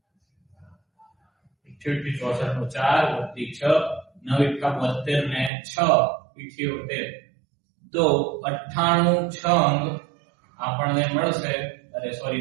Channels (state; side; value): drops out; left; at 5.5 s